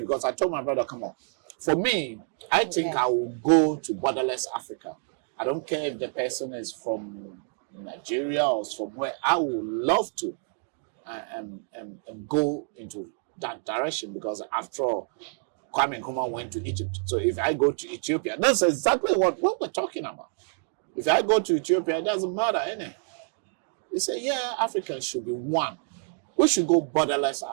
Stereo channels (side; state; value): left; silent; 60 dB below the other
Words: I told my brother, come on, For me, I think I will go to borderless Africa. I don't care if the person is from Nigeria or somewhere. I would love to go into that direction, because after all, Kwame Nkrumah went to Egypt. So if I go to Ethiopia, that's exactly what we're talking about. If I go to Ethiopia, it doesn't matter, innit? They say, yeah, Africans should be one. We should go borderless